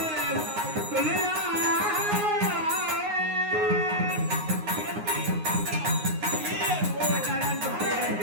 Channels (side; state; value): left; late; 9.6 ms